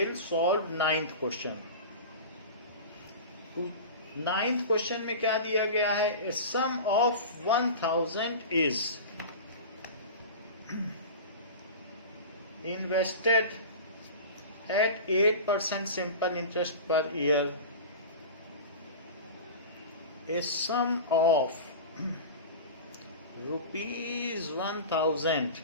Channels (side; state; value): both; inverted; correlation -0.32